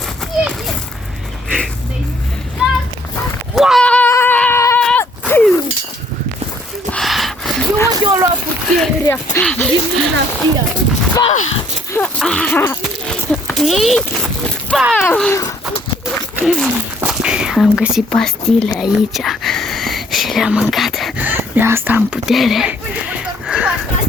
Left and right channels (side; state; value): both; normal; correlation 0.63